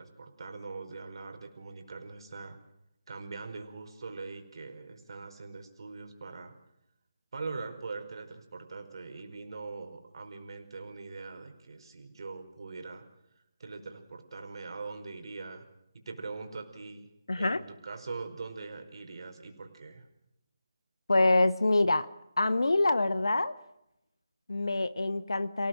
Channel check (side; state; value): both; inverted; correlation -0.94